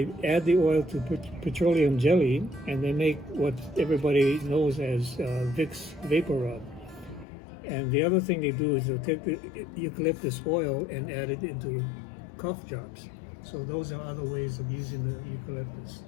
add the oil to petroleum jelly, and they make what everybody knows as Vicks Vapor Rub. And the other thing they do is they take the eucalyptus oil and add it into cough drops. So those are other ways of using the eucalyptus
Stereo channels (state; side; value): drops out; right; at 7.2 s